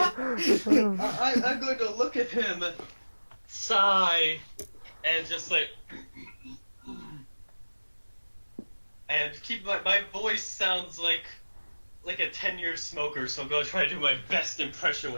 I'm going to look at him, sigh, and just like, and keep my voice sounds like a 10-year smoker. So I'm going to try to do my best impression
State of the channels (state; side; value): inverted; both; correlation -1.00